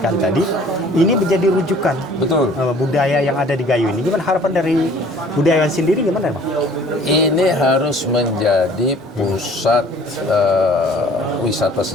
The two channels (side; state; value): both; normal; correlation 0.52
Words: tadi, ini menjadi rujukan. Betul. Budaya yang ada di Gayo ini. Gimana harapan dari budayawan sendiri, gimana Bang? Ini harus menjadi pusat wisata